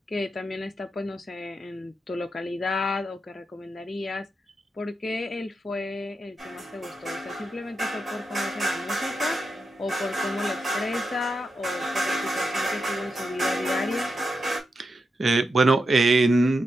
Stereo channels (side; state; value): both; normal; correlation 0.86